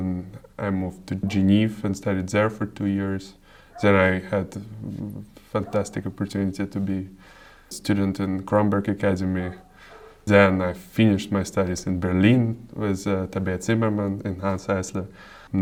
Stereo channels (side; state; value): both; identical; correlation 1.00